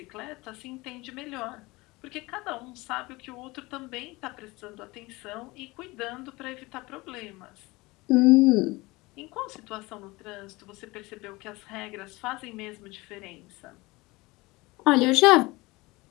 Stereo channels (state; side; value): quieter; right; 22.3 dB